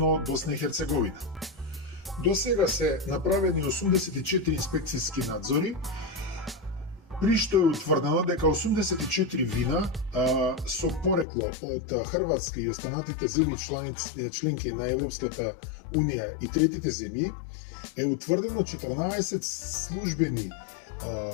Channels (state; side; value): drops out; right; at 11.2 s